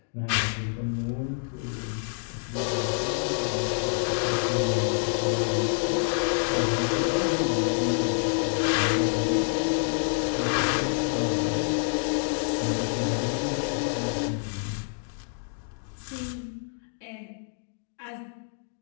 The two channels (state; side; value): silent; right; 58 dB below the other